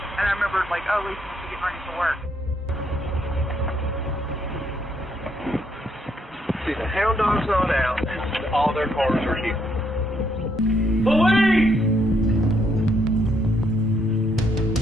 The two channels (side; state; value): both; normal; correlation 0.73